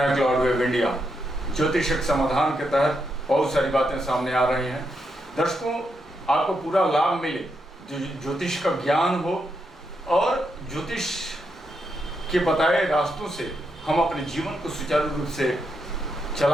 हैं क्लाउड वेव इंडिया। ज्योतिषक समाधान के तहत बहुत सारी बातें सामने आ रही हैं। दर्शकों, आपको पूरा लाभ मिले, ज्योतिष का ज्ञान हो और ज्योतिष के बताए रास्तों से हम अपने जीवन को सुचारू रूप से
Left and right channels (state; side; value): normal; both; correlation 0.82